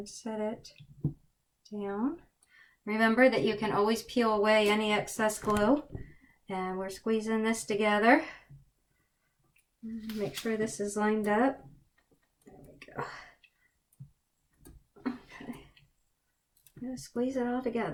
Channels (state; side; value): identical; both; correlation 1.00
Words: set it down. Remember that you can always peel away any excess glue. And we're squeezing this together. Make sure this is lined up. There we go. Okay. Just squeeze it all